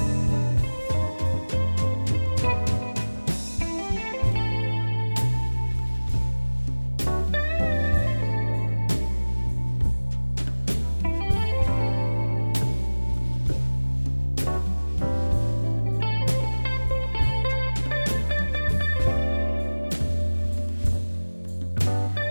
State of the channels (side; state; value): both; inverted; correlation -1.00